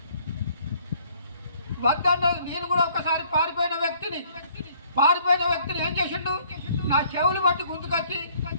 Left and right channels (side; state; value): both; inverted; correlation -0.61